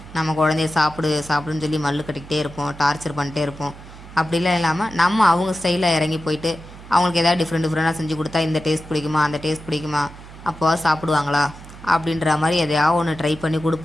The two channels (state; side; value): noise; right; hum, 17 dB below the sound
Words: நம்ம குழந்தைய சாப்பிடுன்னு சொல்லி மல்லு கட்டிக்கிட்டே இருப்போம், டார்ச்சர் பண்ணிட்டே இருப்போம். அப்படிலாம் இல்லாமல் நம்ம அவங்க ஸ்டைலில் இறங்கி போயிட்டு அவங்களுக்கு எதாவது டிஃப்ரெண்ட்டாக செஞ்சு கொடுத்தா, இந்த டேஸ்ட் பிடிக்குமா, அந்த டேஸ்ட் பிடிக்குமா, அப்போ சாப்பிடுவாங்களா அப்படின்ற மாதிரி எதையாவது ஒன்று ட்ரை பண்ணி